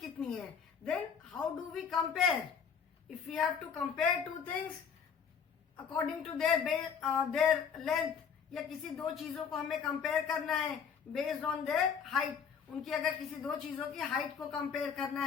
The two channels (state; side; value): quieter; right; 6.8 dB